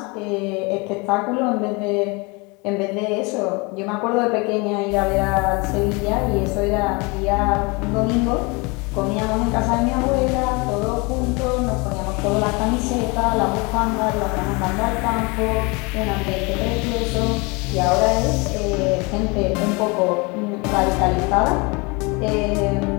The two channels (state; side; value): quieter; right; 28.1 dB